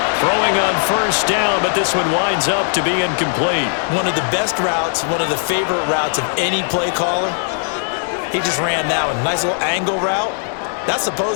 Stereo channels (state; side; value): silent; right; 67 dB below the other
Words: Throwing on first down, but this one winds up to be incomplete. One of the best routes, one of the favorite routes of any play caller. He just ran that one. Nice little angle route. That's